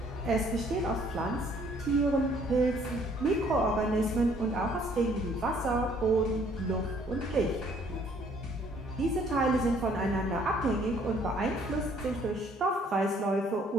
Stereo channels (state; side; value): normal; both; correlation 0.62